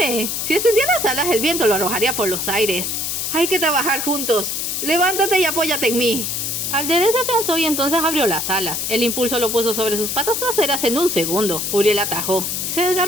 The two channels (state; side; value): noise; left; hiss, 2 dB below the sound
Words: Si extendía las alas, el viento lo arrojaría por los aires. Hay que trabajar juntos. Levántate y apóyate en mí. Alderet se afianzó y entonces abrió las alas. El impulso lo puso sobre sus patas traseras en un segundo. Uriel atajó. Se